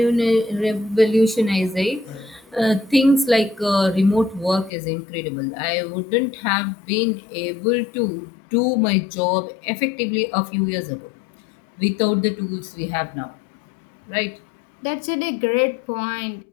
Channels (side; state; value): right; drops out; at 4.7 s